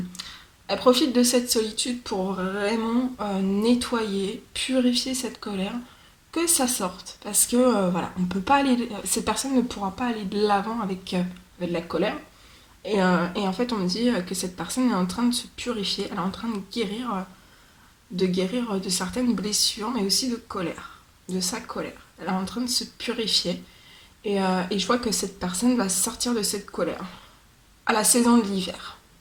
elle profite de cette solitude pour vraiment nettoyer, purifier cette colère, que ça sorte. Parce que voilà, on peut pas aller, cette personne ne pourra pas aller de l'avant avec de la colère. Et en fait, on me dit que cette personne est en train de se purifier, elle est en train de guérir de certaines blessures, mais aussi de colère, de sa colère. Elle est en train de se purifier. Et je vois que cette personne va sortir de cette colère à la saison de l'hiver.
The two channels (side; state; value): both; identical; correlation 1.00